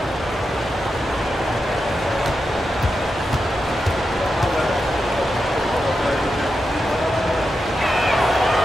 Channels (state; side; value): normal; both; correlation 0.88